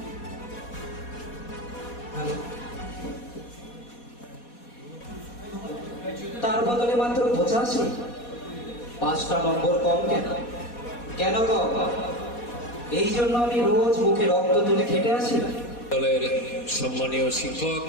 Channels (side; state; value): right; late; 4.2 ms